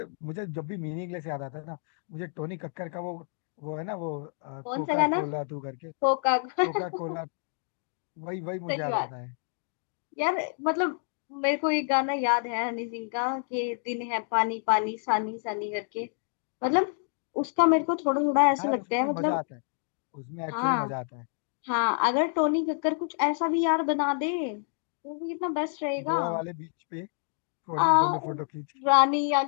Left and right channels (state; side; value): silent; right; 58 dB below the other